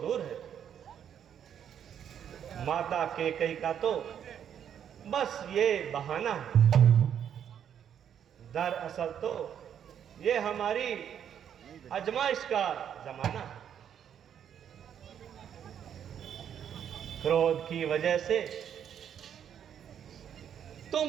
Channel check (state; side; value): quieter; left; 9.0 dB